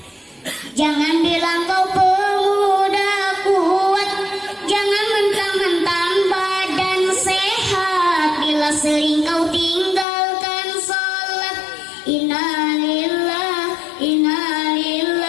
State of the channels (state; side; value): drops out; right; at 10.1 s